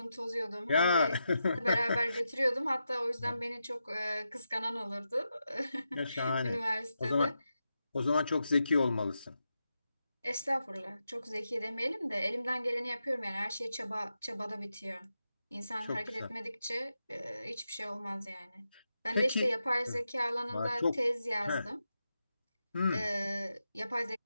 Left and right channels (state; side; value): inverted; both; correlation -0.88